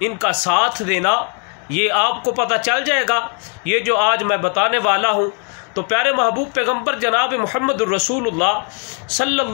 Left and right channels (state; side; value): quieter; right; 37.2 dB